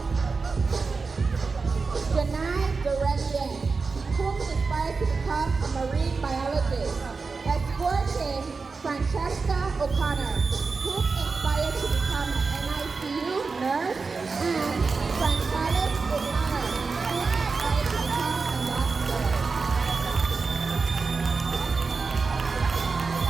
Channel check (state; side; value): quieter; left; 4.5 dB